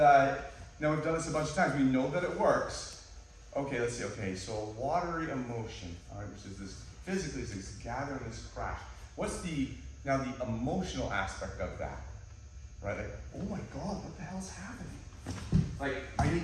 now we've done this a bunch of times, we know that it works. Okay, let's see. Okay, so watery emotion, all right, which is this physically, is this gathering, this crash. What's the emotional aspect of that? Right? Like, oh my God, what the hell's happening? Like, I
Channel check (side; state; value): both; identical; correlation 1.00